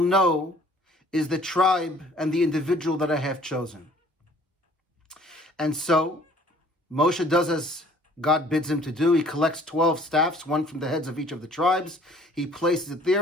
know is the tribe and the individual that I have chosen. And so Moshe does as God bids him to do. He collects 12 staffs, one from the heads of each of the tribes. He places it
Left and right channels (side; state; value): both; normal; correlation 0.55